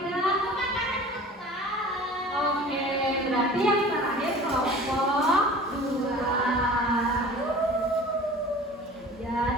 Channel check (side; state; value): both; normal; correlation 0.42